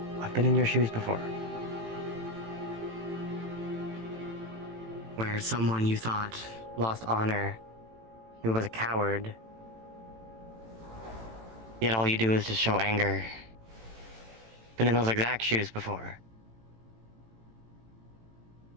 I've been in your shoes before. Where someone you thought lost honor, who was a coward, yet all you do is just show anger. Been in those exact shoes before.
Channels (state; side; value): late; left; 18 ms